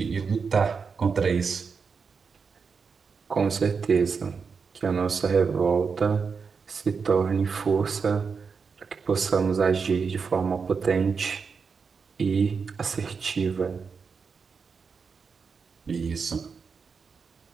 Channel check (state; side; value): quieter; left; 5.5 dB